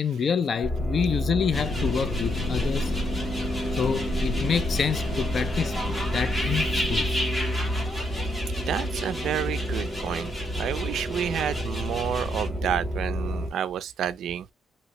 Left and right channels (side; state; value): both; normal; correlation 0.75